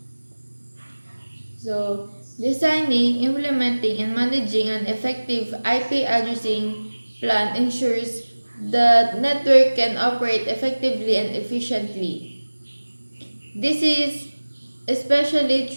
So, designing, implementing, and managing an effective IP addressing plan ensures the network can operate effectively and efficiently. This is especially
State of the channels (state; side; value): inverted; both; correlation -1.00